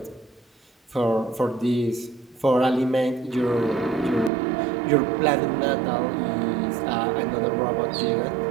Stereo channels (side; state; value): left; drops out; at 4.3 s